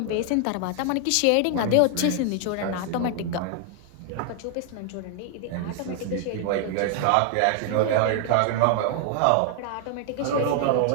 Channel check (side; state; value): both; different; correlation 0.00